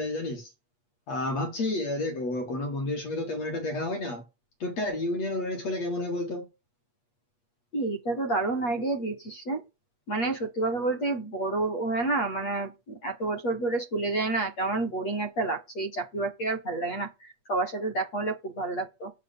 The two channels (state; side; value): late; right; 8.4 ms